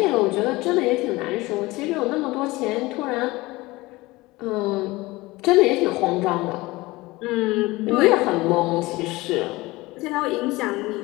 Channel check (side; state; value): right; quieter; 20.8 dB